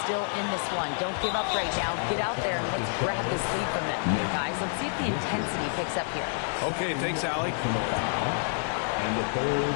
still in this one. Don't give up right now. Get out there and let's grab this lead from them. Guys, let's see if the intensity picks up here. Okay, thanks, Allie. And the third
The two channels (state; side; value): silent; right; 59 dB below the other